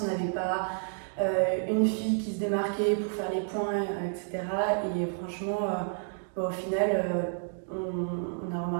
on n'avait pas une fille qui se démarquait pour faire les points, etc. Et franchement, au final, on a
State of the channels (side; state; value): left; silent; digital silence